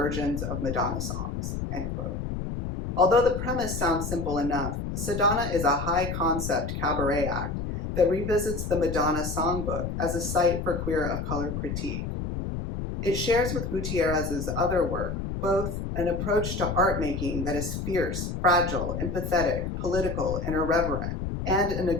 of Madonna songs," end quote. Although the premise sounds simple enough, SADONNA is a high-concept cabaret act that revisits the Madonna songbook as a site for queer of color critique. It shares with Gutierrez's other work both an approach to art making that is fierce, fragile, empathetic, political, and irreverent, and a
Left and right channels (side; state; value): left; noise; rumble, 4 dB below the sound